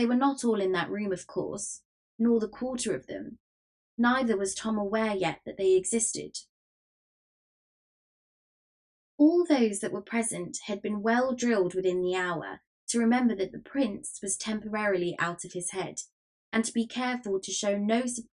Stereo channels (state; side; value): identical; both; correlation 1.00